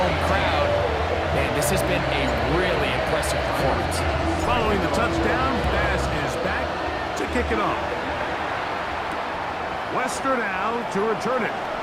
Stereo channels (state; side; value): identical; both; correlation 1.00